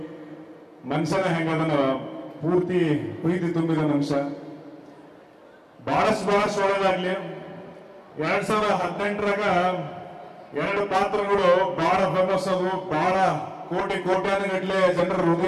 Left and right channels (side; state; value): both; identical; correlation 1.00